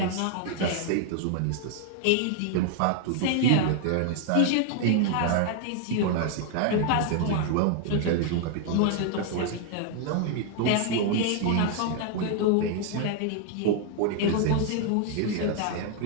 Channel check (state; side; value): different; both; correlation 0.00